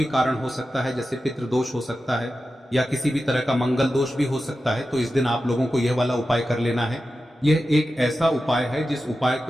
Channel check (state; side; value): normal; both; correlation 0.92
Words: कारण हो सकता है, जैसे पितृदोष हो सकता है या किसी भी तरह का मंगल दोष भी हो सकता है। तो इस दिन आप लोगों को यह वाला उपाय कर लेना है। यह एक ऐसा उपाय है जिस उपाय